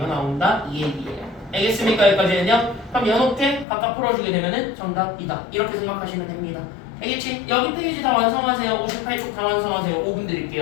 나온다. 이 얘기예요. 알겠습니까? 여기까지는요? 그럼 이렇게 각각 풀어주게 되면은 정답이다. 이렇게 생각하시면 됩니다. 알겠지? 여기 페이지 다 완성하세요. 58쪽 다 완성하세요. 5분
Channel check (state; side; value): drops out; right; at 3.7 s